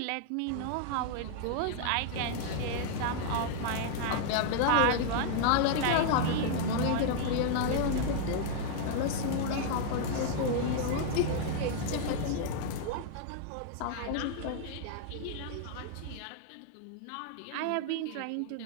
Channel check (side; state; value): both; different; correlation 0.00